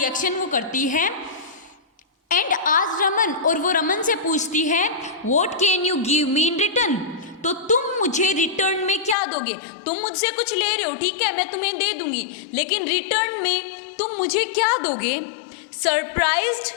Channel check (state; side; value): drops out; right; at 9.2 s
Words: वो करती है. एंड आज रमन, और वो रमन से पूछती है, what can you give me in return? तो तुम मुझे रिटर्न में क्या दोगे? तुम मुझसे कुछ ले रहे हो, ठीक है, मैं तुम्हें दे दूंगी, लेकिन रिटर्न में तुम मुझे क्या दोगे?